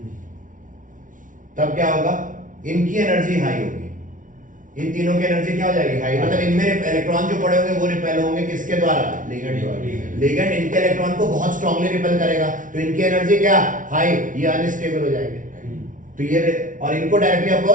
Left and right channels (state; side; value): late; left; 0.38 ms